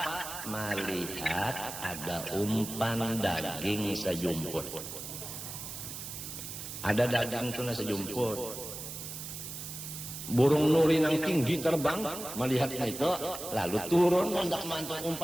Melihat ada umpan daging sejumput. Ada daging itu sejumput. Burung nuri yang tinggi terbang, melihat itu, lalu turun hendak mantuk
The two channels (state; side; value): noise; right; hiss, 8 dB below the sound